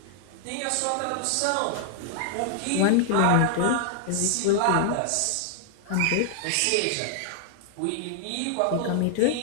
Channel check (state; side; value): different; both; correlation 0.00